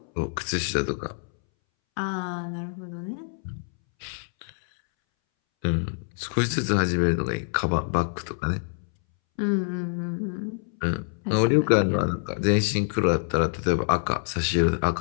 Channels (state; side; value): silent; right; 61 dB below the other